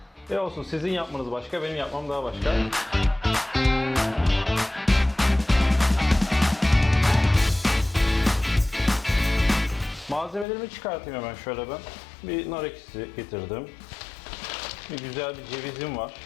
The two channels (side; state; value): right; drops out; at 10.5 s